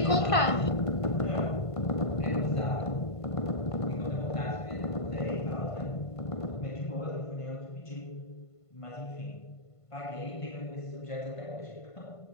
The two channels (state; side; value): late; right; 1.5 ms